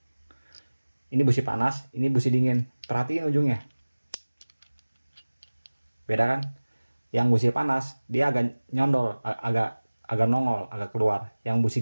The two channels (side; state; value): both; inverted; correlation -1.00